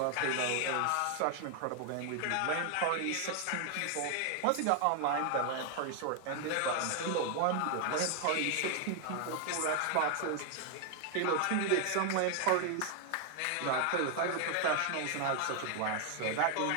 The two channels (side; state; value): both; different; correlation 0.00